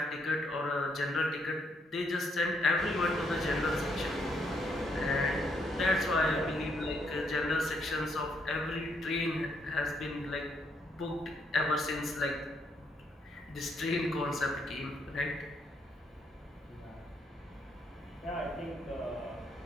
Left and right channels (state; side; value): normal; both; correlation 0.74